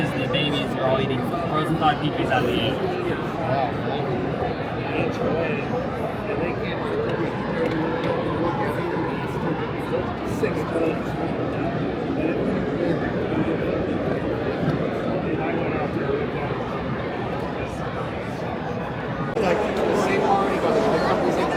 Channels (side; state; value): both; identical; correlation 1.00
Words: the babies are all eating frozen thawed peaches out of the egg. Like the same one, he goes, the company's in